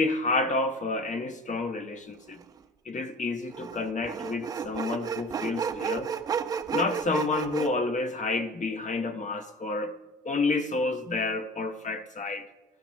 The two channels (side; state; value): both; normal; correlation 0.40